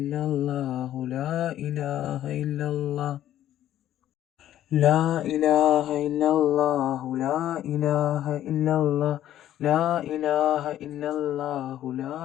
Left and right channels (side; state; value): right; quieter; 12.2 dB